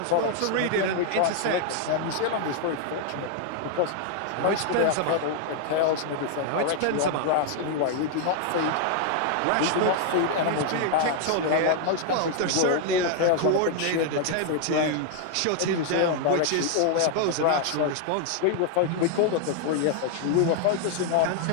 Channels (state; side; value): different; both; correlation 0.00